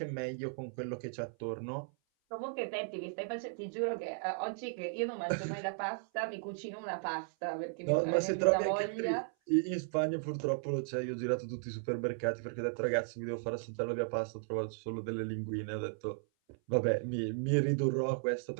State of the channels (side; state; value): left; silent; 54 dB below the other